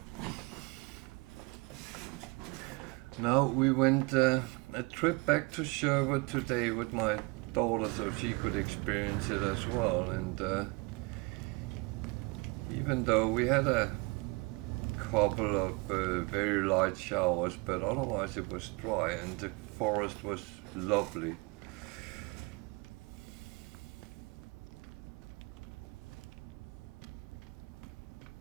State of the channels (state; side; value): quieter; left; 28.4 dB